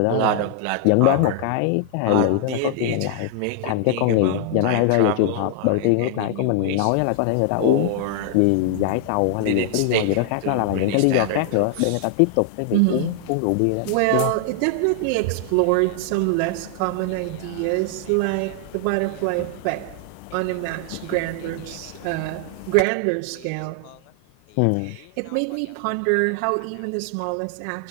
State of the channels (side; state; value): both; different; correlation 0.00